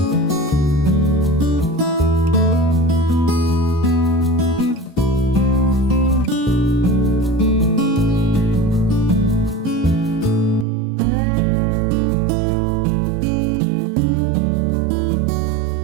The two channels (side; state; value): left; drops out; at 10.7 s